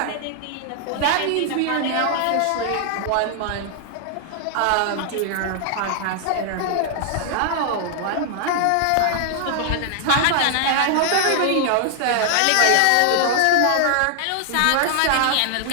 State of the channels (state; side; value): different; both; correlation -0.01